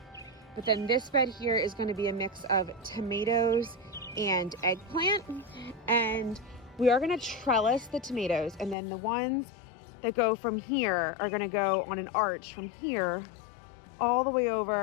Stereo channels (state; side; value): drops out; right; at 8.8 s